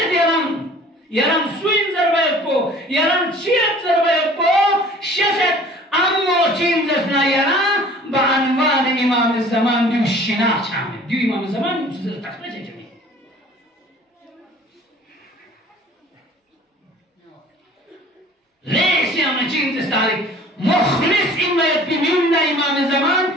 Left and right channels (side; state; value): both; normal; correlation 0.49